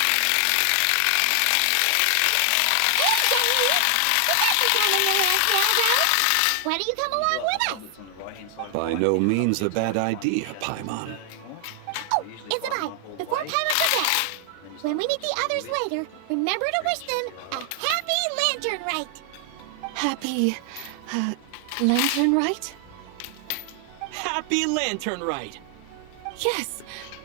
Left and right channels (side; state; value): both; different; correlation 0.00